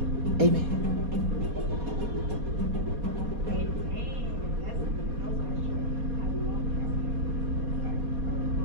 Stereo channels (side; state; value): left; late; 4.2 ms